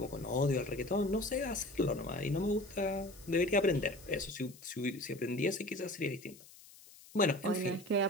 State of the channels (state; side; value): noise; left; hiss, 21 dB below the sound